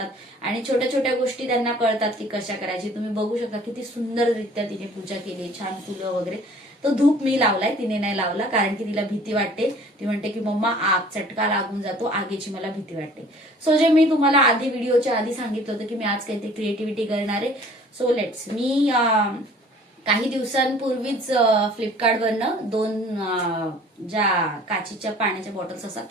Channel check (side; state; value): both; normal; correlation 0.51